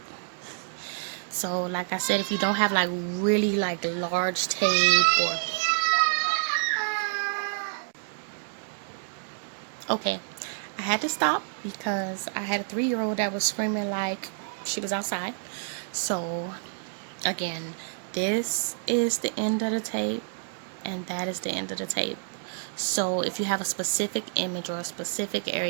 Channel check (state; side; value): silent; left; digital silence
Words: So like I said, if you don't have like really like large tape, or okay, I had to stop because I had a 3-year-old that was screaming like she was outside. So again, this is the end of the tape, and that is the end of the tape. So if you have a specific image or a specific